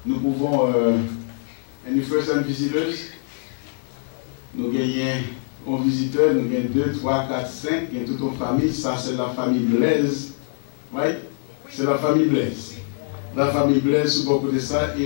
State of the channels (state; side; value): silent; right; 63 dB below the other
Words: Nous pouvons. Any first-time visitors? Nous gagnons un visiteur, nous gagnons 2, 3, 4, 5. Il y a toute une famille. Ça, c'est la famille Blaise. Right? C'est la famille Blaise. La famille Blaise, sous beaucoup de ça.